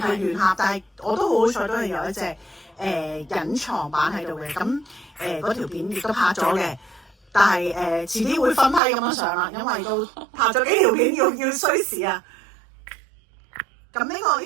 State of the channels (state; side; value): drops out; left; at 8.8 s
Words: 係佢原盒，但係我都好好彩，都係有一隻隱藏版喺度嘅。咁嗰條片亦都拍咗嘅。但係遲啲會分批咁樣上啦，因為都拍咗幾條片要需時啊。咁呢